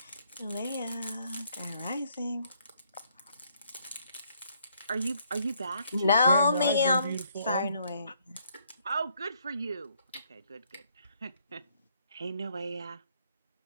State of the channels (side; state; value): both; inverted; correlation -0.70